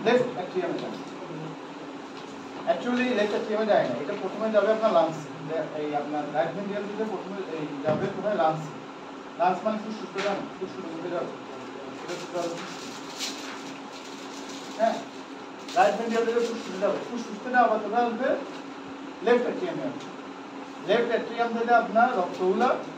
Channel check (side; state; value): both; identical; correlation 1.00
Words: লেফট অ্যাট্রিয়ামে যাবে। অ্যাকচুয়ালি লেফট অ্যাট্রিয়ামে যায় না, এটা প্রথমে যাবে আপনার লাংস, এই আপনার রাইট ভেন্ট্রিকল থেকে প্রথমে এই যাবে কোথায়, লাংস। লাংস মানে ফুসফুসে যাবে, ফুসফুসের মধ্যে যাবে, হ্যাঁ, রাইট ভেন্ট্রিকল থেকে ফুসফুসে যাবে, ফুসফুস থেকে আবার কোথায় আসবে, লেফট অ্যাট্রিয়ামে আসবে। লেফট অ্যাট্রিয়াম থেকে আপনার রক্তগুলো